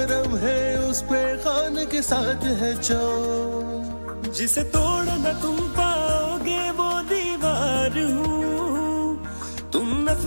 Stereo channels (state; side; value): inverted; both; correlation -1.00